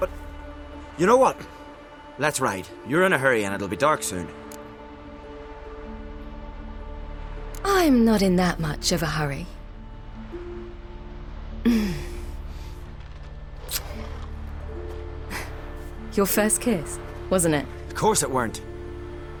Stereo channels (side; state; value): both; identical; correlation 1.00